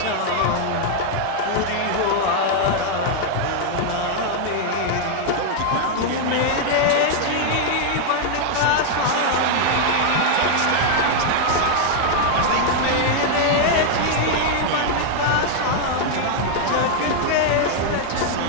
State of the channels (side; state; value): both; different; correlation 0.00